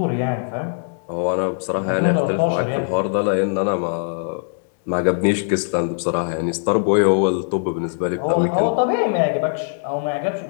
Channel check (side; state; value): right; silent; digital silence